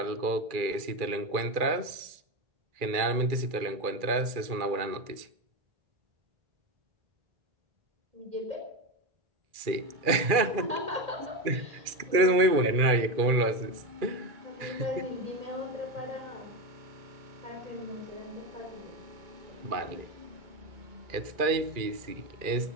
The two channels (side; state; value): left; late; 2.3 ms